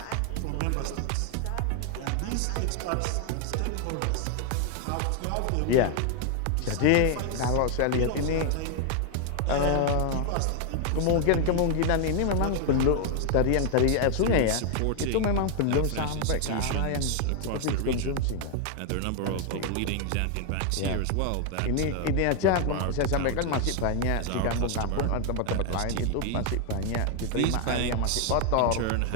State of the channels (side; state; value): both; different; correlation 0.00